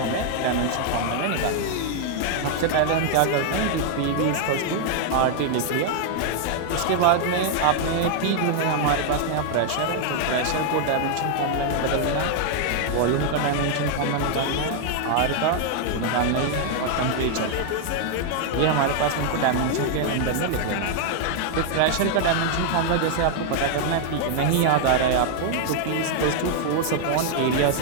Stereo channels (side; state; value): both; different; correlation 0.00